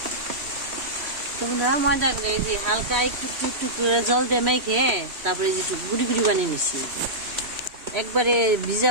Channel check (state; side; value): late; left; 3.1 ms